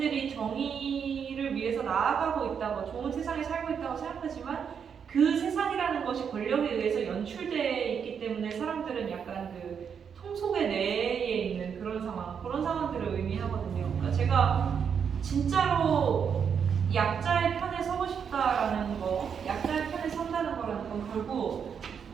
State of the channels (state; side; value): quieter; left; 7.1 dB